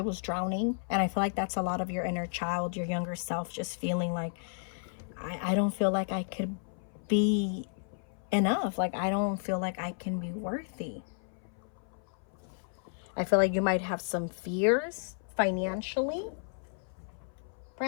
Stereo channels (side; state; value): right; silent; 56 dB below the other